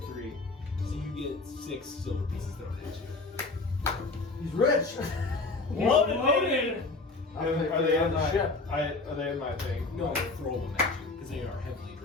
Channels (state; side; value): quieter; right; 3.5 dB